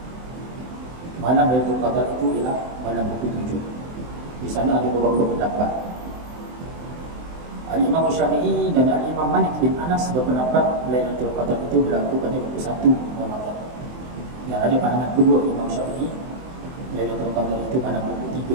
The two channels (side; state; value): left; late; 23 ms